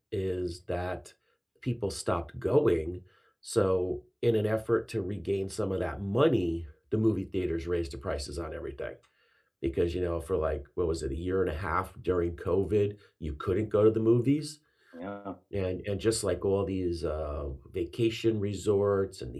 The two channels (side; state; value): both; identical; correlation 1.00